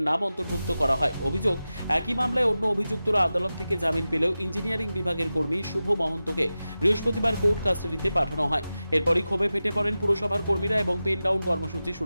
নাম অন্তর্ভুক্ত করা হয়। অভিযোগ, একই মামলায় অন্য অভিযুক্তরা আদালত থেকে জামিন পেলেও ইঞ্জিনিয়ারিং বিভাগের কর্মী শুভ মহন্তকে বৃহস্পতিবার কোর্ট কাস্টাডিতে পাঠানো হয়। এরপরই ক্ষোভে ফেটে পড়েন পুরসভার কর্মীরা এবং পেন ডাউন কর্মসূচি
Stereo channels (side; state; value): both; inverted; correlation -0.94